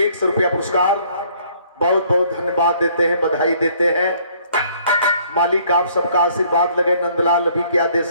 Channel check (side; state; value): both; inverted; correlation -0.61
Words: रुपया पुरस्कार बहुत बहुत धन्यवाद देते हैं, बधाई देते हैं। मालिक आप सबका आशीर्वाद लगे, नंदलाल अभी क्या दे